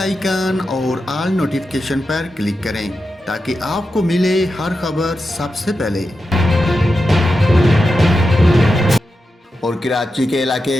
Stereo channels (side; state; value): both; normal; correlation 0.89